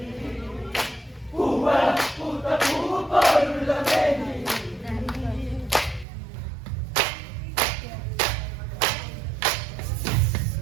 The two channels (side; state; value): left; drops out; at 6.1 s